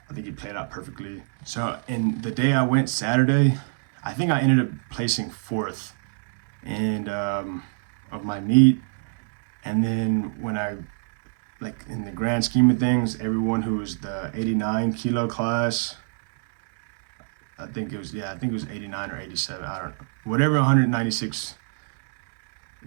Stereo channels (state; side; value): silent; left; digital silence